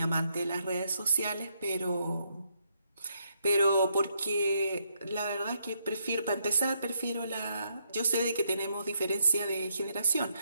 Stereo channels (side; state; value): both; inverted; correlation -0.76